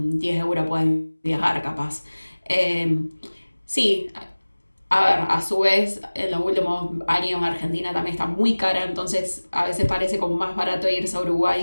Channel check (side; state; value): both; inverted; correlation -1.00